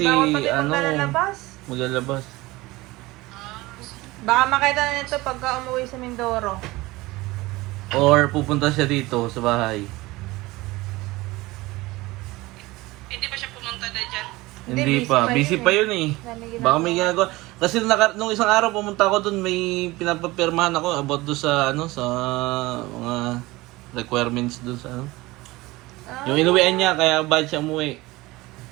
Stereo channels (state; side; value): quieter; left; 20.4 dB